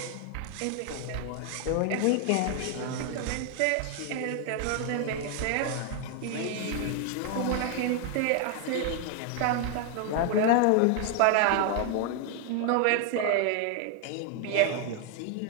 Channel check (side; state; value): both; different; correlation 0.00